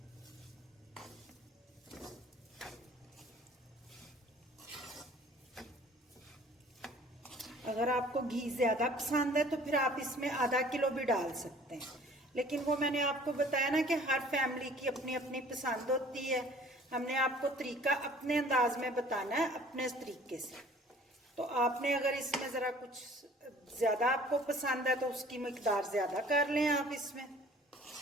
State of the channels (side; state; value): both; normal; correlation 0.51